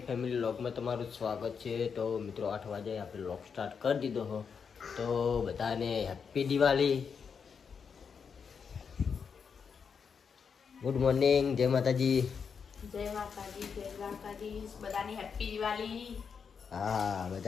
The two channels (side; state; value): right; quieter; 6.3 dB